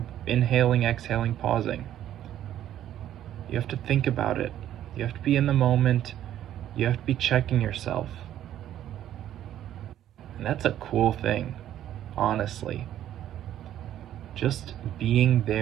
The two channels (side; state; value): left; quieter; 11.6 dB